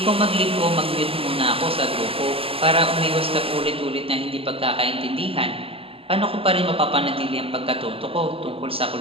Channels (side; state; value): left; late; 0.27 ms